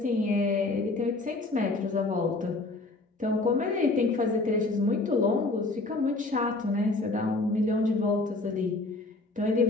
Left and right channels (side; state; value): right; quieter; 3.2 dB